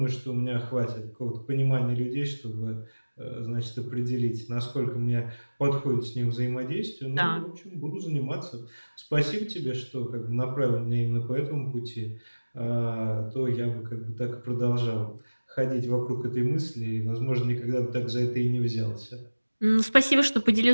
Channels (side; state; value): both; inverted; correlation -1.00